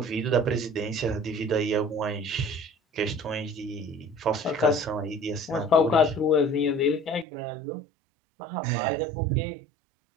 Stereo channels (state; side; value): drops out; left; at 7.2 s